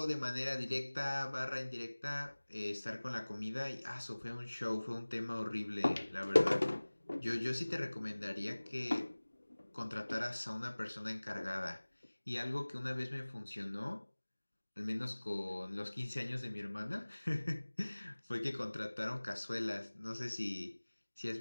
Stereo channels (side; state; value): both; inverted; correlation -1.00